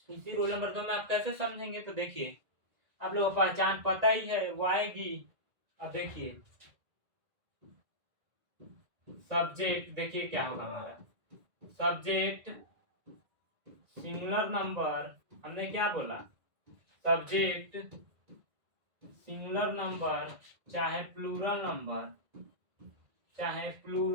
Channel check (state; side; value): late; left; 1.8 ms